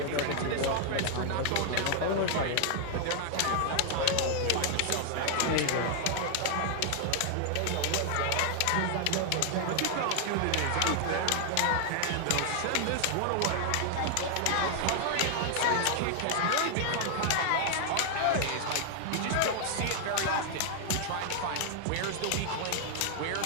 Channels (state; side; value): different; both; correlation 0.00